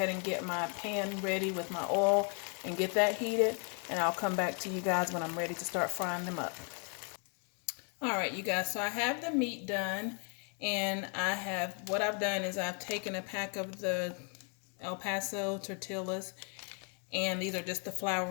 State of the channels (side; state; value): right; quieter; 39.5 dB